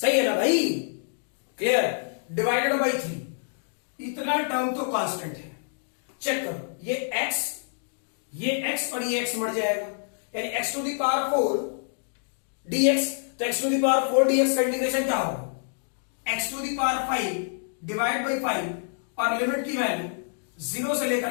है ना भाई? क्लियर? डिवाइडेड बाई 3, इतना टर्म तो कांस्टेंट है। चेक करो, ये x और ये x मर जाएगा, यानी x to the power 4 dx, तो x to the power 4 dx का इंटीग्रेशन क्या होगा? x to the power 5 divide by 5, और लिमिट की वैल्यू 0 से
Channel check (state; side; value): silent; right; digital silence